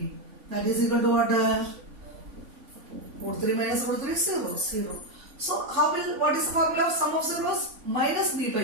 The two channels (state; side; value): late; left; 3.5 ms